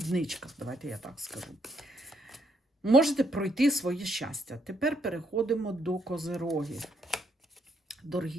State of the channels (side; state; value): both; normal; correlation 0.73